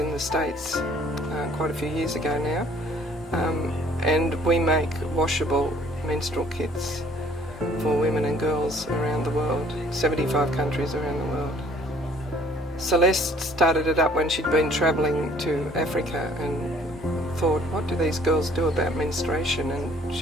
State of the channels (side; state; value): left; noise; hum, 27 dB below the sound